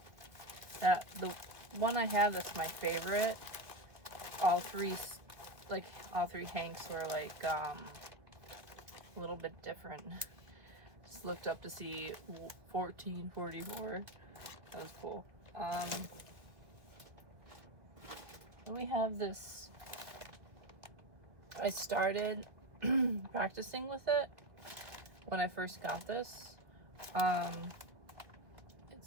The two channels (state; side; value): late; left; 2.1 ms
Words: that the one I have that's my favorite, all three Hanks were like a little bit different. Just looked up to see 1444. That was cool. We have this. I started practicing with it when I first got this.